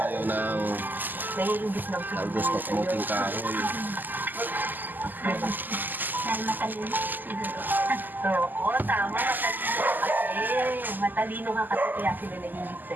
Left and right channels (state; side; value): late; left; 0.087 ms